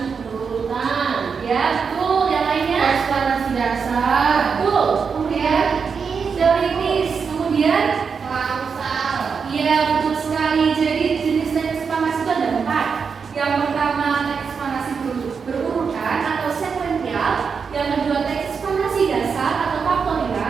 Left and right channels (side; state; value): left; quieter; 5.8 dB